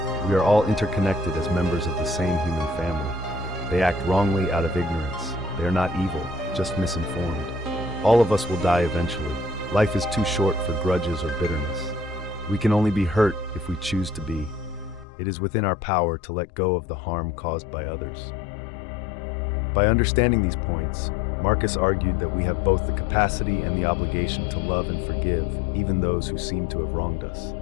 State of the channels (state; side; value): drops out; right; at 15.1 s